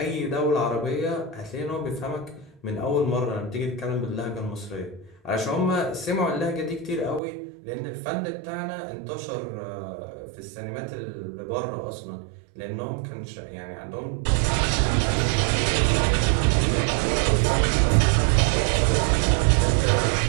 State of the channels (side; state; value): left; drops out; at 7.2 s